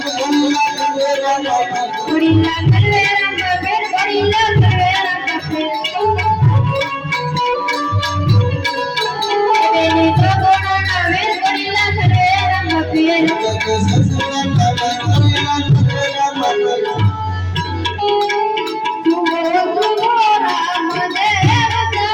Gorilla Calvera Mape, Gorilla Calvera Mape. Benito Corona ver Gorilla Calvera Mape.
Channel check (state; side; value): identical; both; correlation 1.00